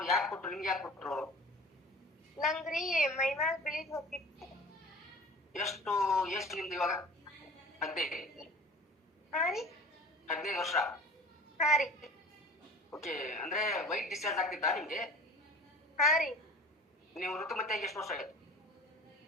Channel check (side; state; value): both; normal; correlation 0.42